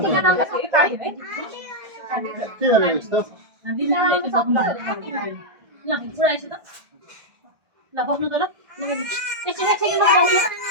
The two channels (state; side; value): late; left; 1.6 ms